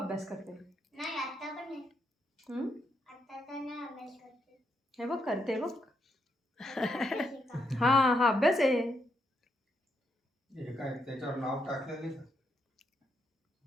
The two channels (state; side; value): normal; both; correlation 0.78